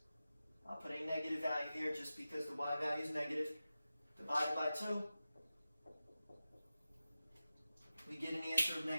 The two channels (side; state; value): both; inverted; correlation -0.94